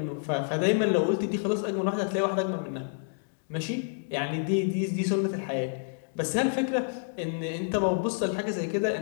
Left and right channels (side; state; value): right; silent; digital silence